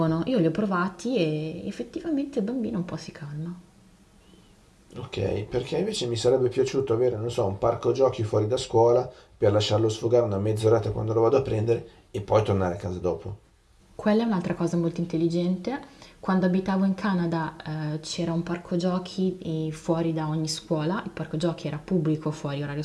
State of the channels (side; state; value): both; identical; correlation 1.00